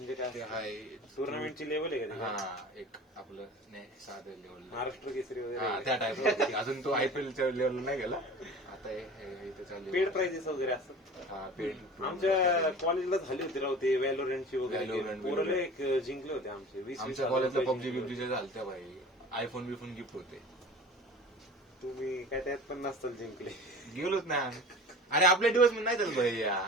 काय? ते हाय टुर्नामेंटची लेवल आहे का? हा, एक आपलं नाही साधं लेवल, महाराष्ट्र केसरी हा वगैरे त्या टाइप. अजून तो आयपीएलच्या लेवलला नाही गेला. आता इथं चालू पेड प्राइजेस वगैरे असं. हा पेड. आमच्या कॉलेजला झाली होती राव ते व्हॅलोरंटची वगैरे Valorant, पोरं एक जिंकले होते आमचे 20-20 आमच्या हजार कॉलेजला रुपये पबजी जिंकले बिबजी होते. झालत्या भाई. आयफोन बिफोन गिफ्ट होते. तुम्ही काय त्यात पण नसताल जिंकले. गेलोच नाही आम्ही. अरे आपल्या दिवस नाही चालत भाई.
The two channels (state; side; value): normal; both; correlation 0.39